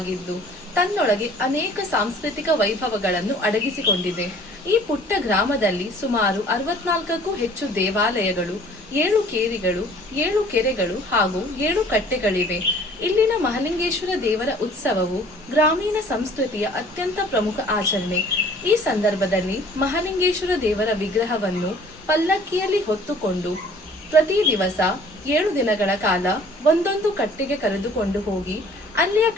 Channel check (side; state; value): both; normal; correlation 0.53